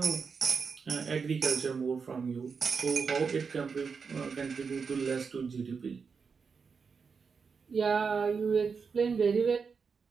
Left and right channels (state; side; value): quieter; left; 5.5 dB